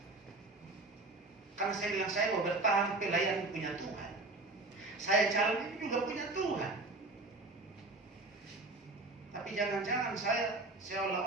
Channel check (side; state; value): left; quieter; 3.0 dB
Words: Karena saya bilang, saya mau bertahan, pelayanan punya Tuhan. Saya jalan ini juga punya Tuhan. Tapi jangan-jangan saya